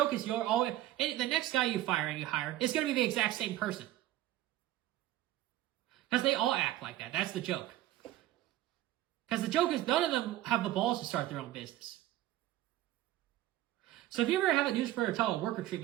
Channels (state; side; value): quieter; left; 14.6 dB